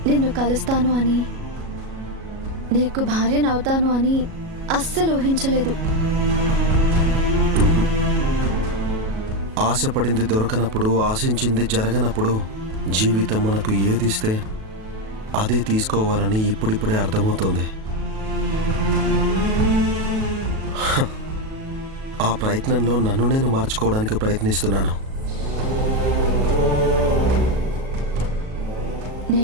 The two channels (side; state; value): left; late; 37 ms